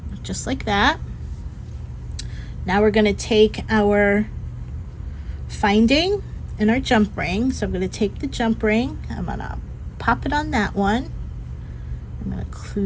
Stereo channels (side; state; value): both; identical; correlation 1.00